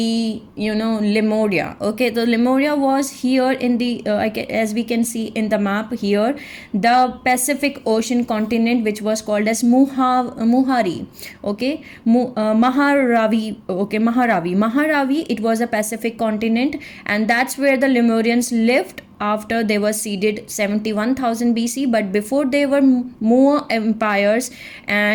Lemuria, okay. The Lemuria was here in the as we can see in the map here, the Pacific Ocean continent, which was called as Muhari, okay. Maharavi, okay. Maharavi, it was a Pacific continent, and that's where the Lemurians lived after they were seeded 71,000 BC, but before they were Moa empires,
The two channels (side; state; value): both; identical; correlation 1.00